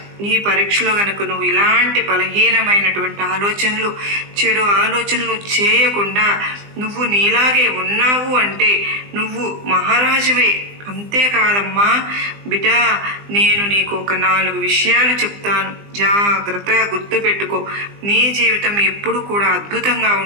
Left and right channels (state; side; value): late; left; 20 ms